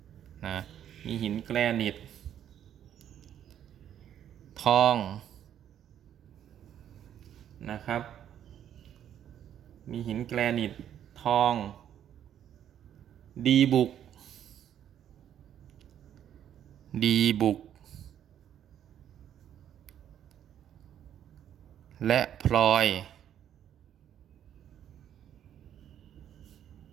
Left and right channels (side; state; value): left; quieter; 10.1 dB